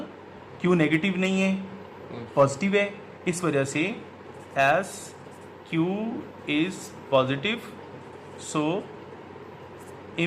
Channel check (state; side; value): identical; both; correlation 1.00